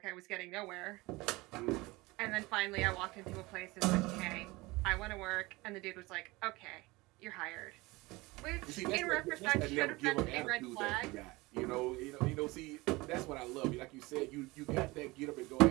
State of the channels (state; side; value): quieter; left; 22.0 dB